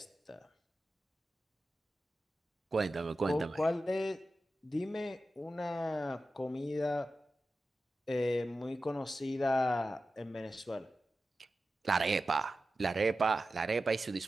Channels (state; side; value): normal; both; correlation 0.93